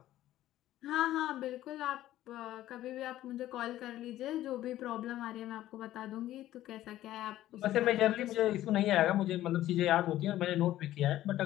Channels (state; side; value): quieter; right; 14.0 dB